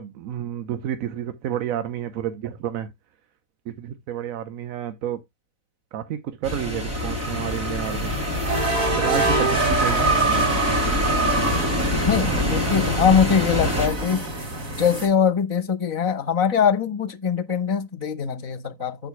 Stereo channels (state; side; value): late; left; 4.0 ms